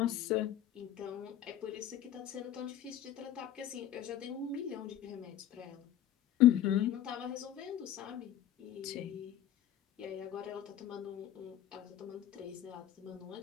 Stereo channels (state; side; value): quieter; right; 11.4 dB